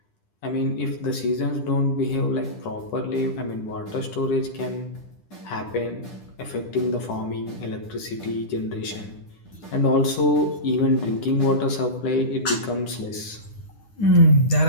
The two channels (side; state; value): right; late; 10 ms